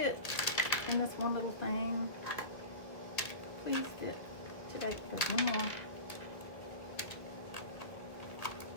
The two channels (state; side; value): late; right; 1.8 ms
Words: in this one little thing. Please fit today. There's one more.